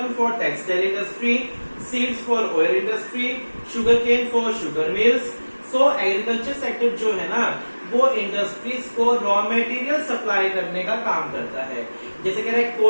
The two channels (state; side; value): inverted; both; correlation -1.00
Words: for textile industry, seeds for oil industry, sugar cane for sugar mills. So agriculture sector जो है ना वो इंडस्ट्रीज को रॉ मटेरियल सप्लाई करने का काम करता है। जैसे कह रहे हैं